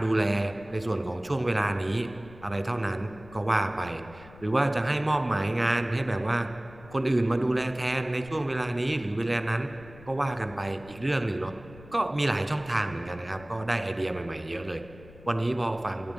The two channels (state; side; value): noise; left; rumble, 19 dB below the sound